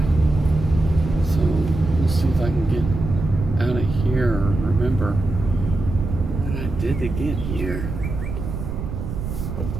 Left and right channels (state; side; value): noise; right; rumble, 6 dB below the sound